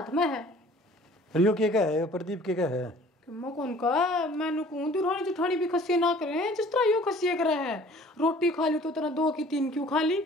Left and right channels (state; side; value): normal; both; correlation 0.51